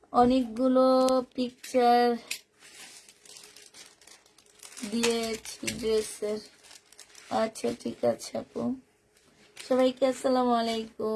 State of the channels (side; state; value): both; identical; correlation 1.00